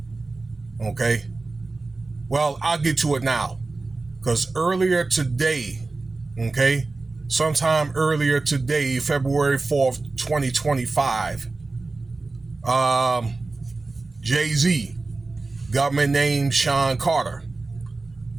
okay? Well, I'll get to it now, because earlier today, okay, sometime earlier today, February 4th, 2025, JayZ, government named Sean Carter,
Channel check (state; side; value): quieter; left; 3.5 dB